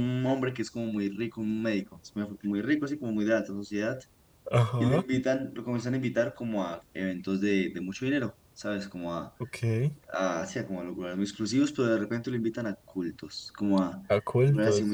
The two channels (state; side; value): identical; both; correlation 1.00